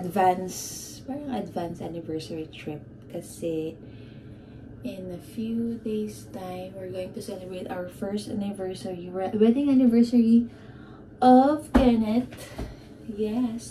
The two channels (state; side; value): identical; both; correlation 1.00